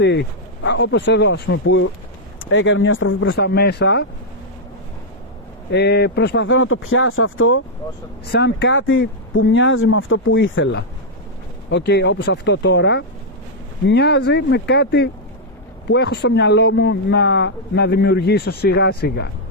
όπως εδώ ας πούμε που έκανε μια στροφή προς τα μέσα, προσπαθώ να το πιάσω αυτό σαν κάτι που μοιάζει με αυτό που ήθελα. Όπως αυτό τώρα μοιάζει με κάτι που έχω στο μυαλό μου να δημιουργήσω σιγά σιγά.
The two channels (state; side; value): normal; both; correlation -0.04